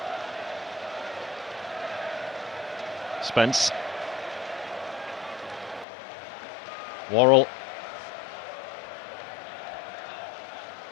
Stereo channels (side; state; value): right; drops out; at 5.9 s